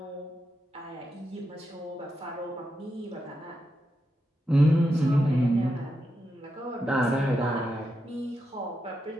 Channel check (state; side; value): normal; both; correlation 0.86